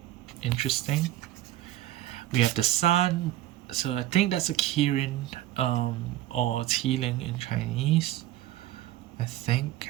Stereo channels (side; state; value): left; quieter; 14.2 dB